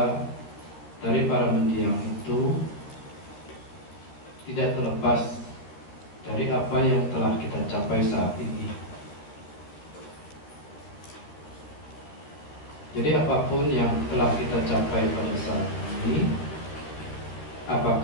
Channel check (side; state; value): right; late; 13 ms